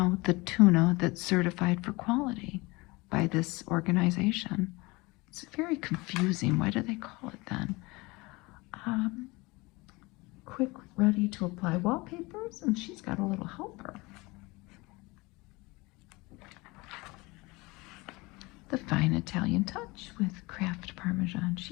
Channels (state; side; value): quieter; right; 23.8 dB